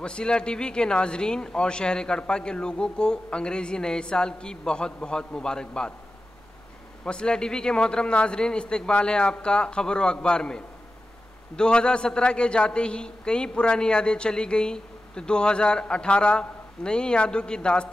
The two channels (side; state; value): both; normal; correlation 0.93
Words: वसीला टीवी के नाजरीन और शहर कड़पा के लोगों को अंग्रेज़ी नए साल की बहुत बहुत मुबारकबाद। वसीला टीवी के मोहतरम नाजरीन, इस्तकबाल है आपका खबर व अखबार में। 2017 के जाते ही कई पुरानी यादें चली गई तो 2018 नई यादों की